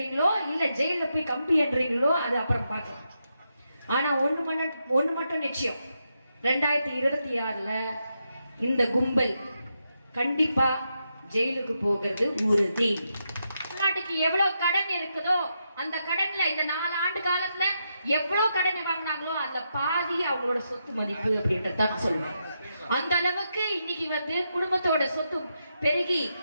இல்ல ஜெயில போய் கம்பி என்றீங்களோ அது அப்புறம் பார்க்கலாம். ஆனா ஒண்ணு மட்டும் நிச்சயம், 2026ல இந்த கும்பல் கண்டிப்பா ஜெயிலுக்கு போகிறது உறுதி. நாட்டுக்கு எவ்வளவு கடன் இருக்குதோ அந்த கடன்ல இந்த 4 ஆண்டு காலத்துல எவ்வளவு கடன் வாங்கினாங்களோ அந்த பாதி அவங்களோட சொத்து மதிப்பு அப்படின்றத சொல்லுவேன். அந்த அளவுக்கு இன்னைக்கு குடும்பத்தோட சொத்து பெருகி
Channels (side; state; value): both; inverted; correlation -0.84